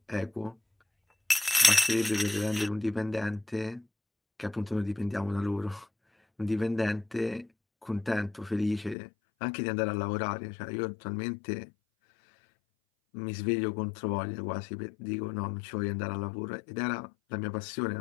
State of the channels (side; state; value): right; drops out; at 9.0 s